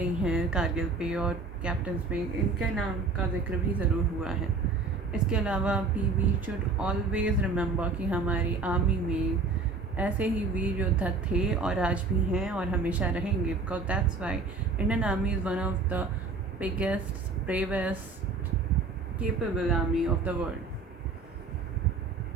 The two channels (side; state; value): left; quieter; 4.0 dB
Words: हैं कारगिल पे और कैप्टन पे, इनके नाम का जिक्र भी ज़रूर हुआ है। इसके अलावा वी शुड ऑलवेज़ रिमेंबर कि हमारी आर्मी में ऐसे ही वीर योद्धा थे और आज भी हैं और हमेशा रहेंगे, because that's why Indian army is one of the biggest, bravest, capable army of the world.